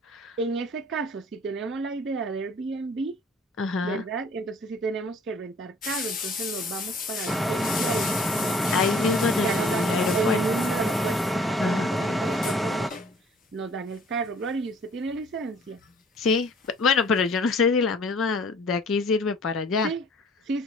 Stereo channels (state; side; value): normal; both; correlation 0.54